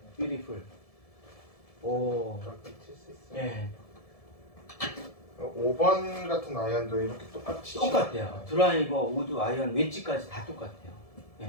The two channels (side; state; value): right; late; 1.7 ms